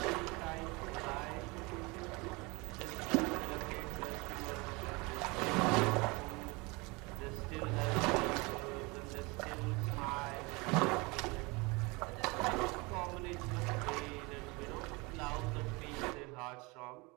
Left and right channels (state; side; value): quieter; left; 26.2 dB